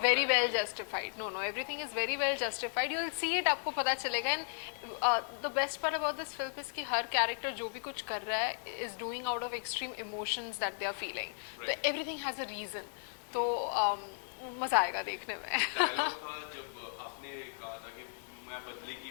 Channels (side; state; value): right; silent; digital silence